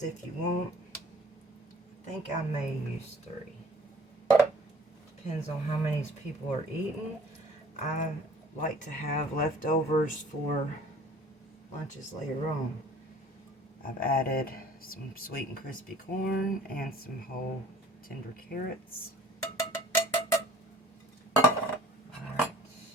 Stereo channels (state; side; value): normal; both; correlation 0.49